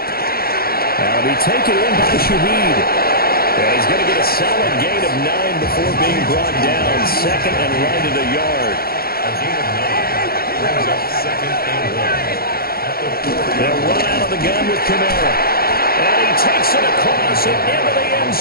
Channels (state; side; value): late; right; 0.44 ms